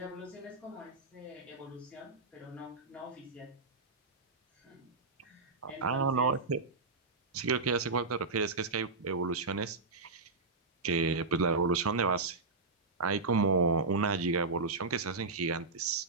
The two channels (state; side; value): quieter; left; 3.9 dB